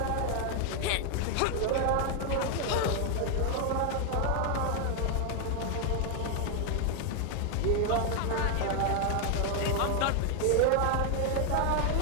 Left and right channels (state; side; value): different; both; correlation 0.00